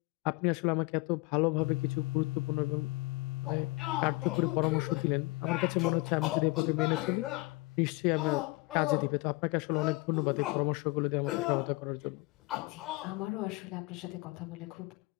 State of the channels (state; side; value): quieter; right; 23.9 dB